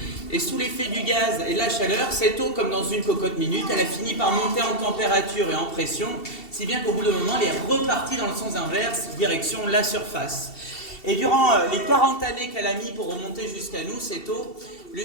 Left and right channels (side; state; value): right; late; 2.7 ms